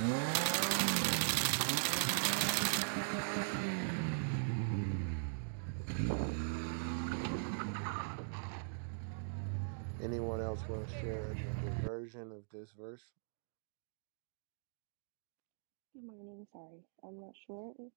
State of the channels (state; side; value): silent; left; digital silence